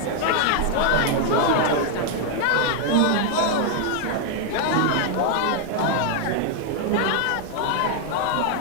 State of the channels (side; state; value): both; different; correlation 0.00